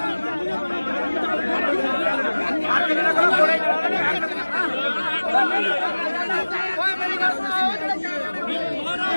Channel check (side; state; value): both; inverted; correlation -1.00